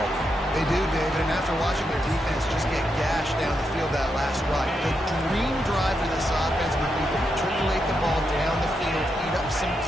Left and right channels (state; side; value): normal; both; correlation 0.83